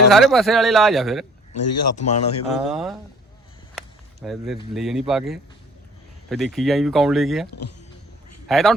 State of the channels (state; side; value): normal; both; correlation 0.53